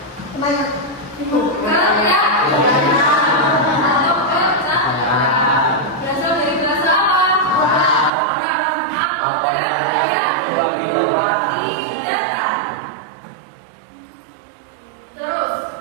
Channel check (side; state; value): left; drops out; at 8.1 s